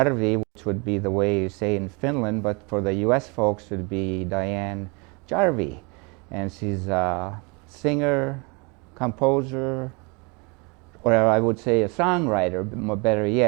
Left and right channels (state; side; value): quieter; left; 30.5 dB